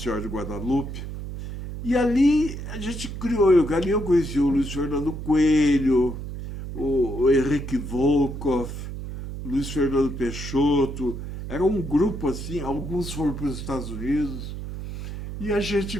Senhora de Guadalupe. E ali a gente criou, ali eu conheci o Luiz Fernando Coelho, o Henrique Volkov, o Luiz Fernando Peixoto. Era um grupo assim, alguns foram para os Estados Unidos, e a gente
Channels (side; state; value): right; noise; hum, 8 dB below the sound